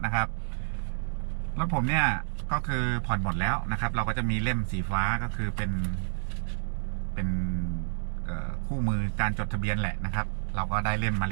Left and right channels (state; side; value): silent; left; digital silence